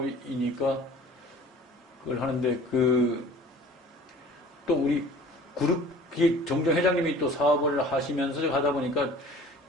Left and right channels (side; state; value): both; normal; correlation 0.46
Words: 그걸 하는데 또 우리 그룹 정정 회장님이 또 사업을 하시면서 하다 보니까